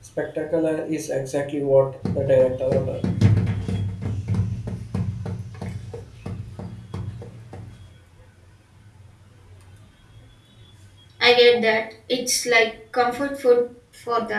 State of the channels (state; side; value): identical; both; correlation 1.00